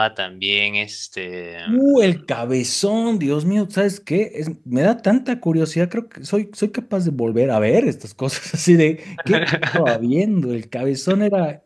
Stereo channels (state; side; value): identical; both; correlation 1.00